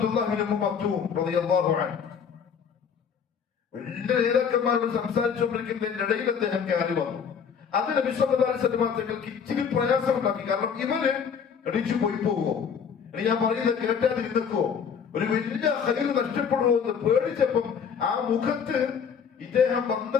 ഇബ്നു മക്തൂം റളിയല്ലാഹു അൻഹു വലിയ നേതാക്കന്മാരോട് സംസാരിച്ചുകൊണ്ടിരിക്കുന്നതിന്റെ ഇടയിൽ അദ്ദേഹം കയറി വന്നു. അത് നബി സല്ലല്ലാഹു അലൈഹി വസല്ലം തങ്ങൾക്ക് ഇച്ചിരി പ്രയാസമുണ്ടാക്കി. കാരണം ഇവര് എണീച്ചു പോയി പോവോ, ഇനി ഞാൻ പറയുന്നത് കേട്ടാതിരുന്നോ, ഒരു വലിയ ഖൈർ നഷ്ടപ്പെടുമോ എന്ന് പേടിച്ചപ്പം ആ മുഖത്ത് ഇദ്ദേഹം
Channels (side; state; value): right; quieter; 6.9 dB